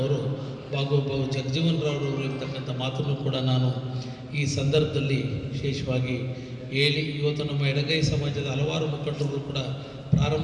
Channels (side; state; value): both; identical; correlation 1.00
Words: ಬಾಬು ಜಗಜೀವನರಾವ್ರವರು ಇರ್ತಕ್ಕಂಥ ಮಾತನ್ನು ಕೂಡ ನಾನು ಈ ಸಂದರ್ಭದಲ್ಲಿ ವಿಶೇಷವಾಗಿ ಹೇಳಿ, ಇವತ್ತು ನಮ್ಮ ಎಡಗೈ ಸಮಾಜದ ಹಲವಾರು ಮುಖಂಡರು ಕೂಡ